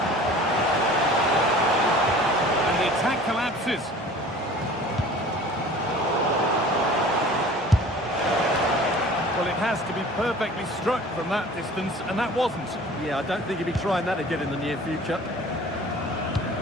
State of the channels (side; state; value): both; normal; correlation 0.45